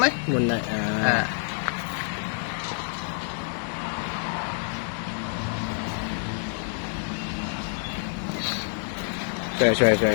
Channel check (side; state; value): right; silent; 60 dB below the other